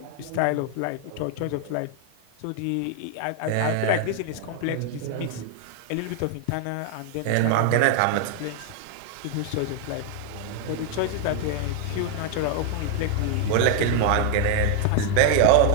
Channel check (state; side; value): different; both; correlation 0.00